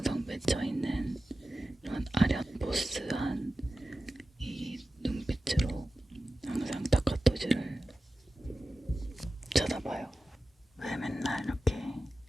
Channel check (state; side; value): normal; both; correlation 0.94